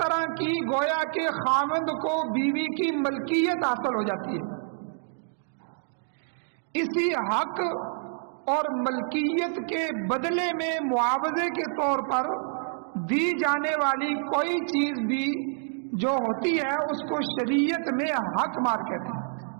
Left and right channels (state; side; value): silent; left; digital silence